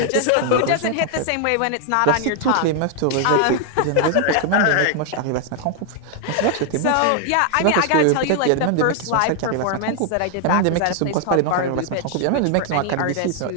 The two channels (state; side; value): different; both; correlation 0.00